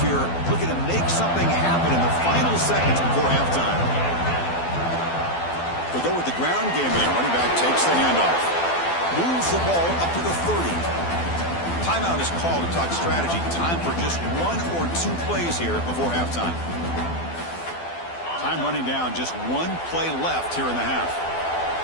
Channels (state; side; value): late; right; 12 ms